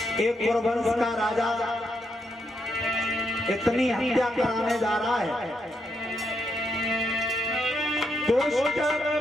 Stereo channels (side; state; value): both; normal; correlation 0.80